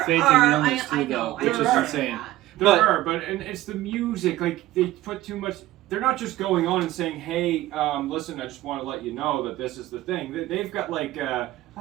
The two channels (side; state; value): left; quieter; 15.7 dB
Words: illness too, though, which is insane. There are, but it's the music. Like they put too much. They're not just going on and saying, "Hey, listen, I just want to let you know that this is the thing." They've got like, "I